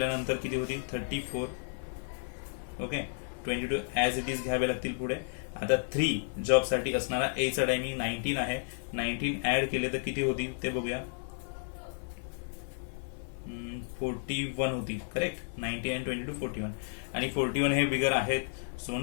किती होतील 34. ओके, 22 ऍज इट इज घ्यावे लागतील पुढे. आता 3 जॉब साठी असणारा ए चा टायमिंग 19 आहे. 19 ऍड केले तर किती होतील ते बघूया. 41 होतील. करेक्ट, 19 आणि 22 41. आणि 41 हे बिगर आहेत, सो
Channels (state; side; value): silent; right; 56 dB below the other